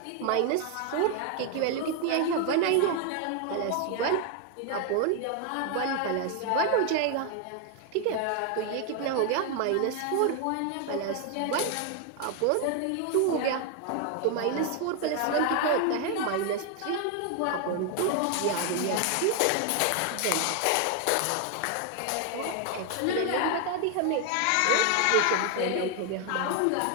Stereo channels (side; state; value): both; different; correlation 0.00